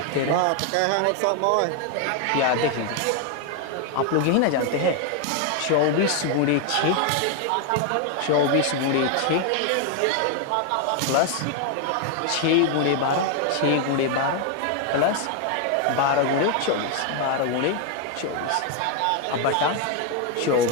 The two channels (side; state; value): both; different; correlation 0.01